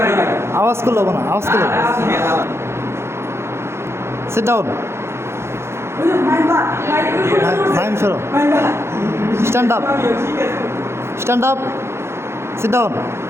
আওয়াজ করলো না আওয়াজ করলো সিট ডাউন মাইম সরো stand up stand up sit down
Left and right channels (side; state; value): left; late; 0.12 ms